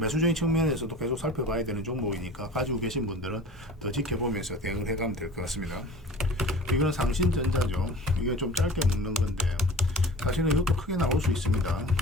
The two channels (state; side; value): normal; both; correlation 0.41